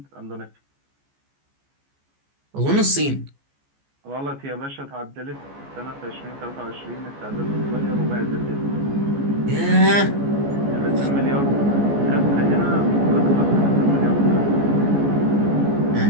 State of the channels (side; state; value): left; late; 14 ms